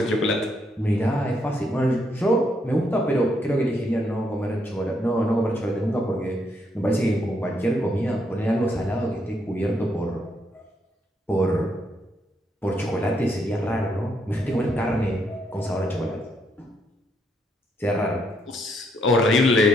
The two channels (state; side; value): normal; both; correlation 0.75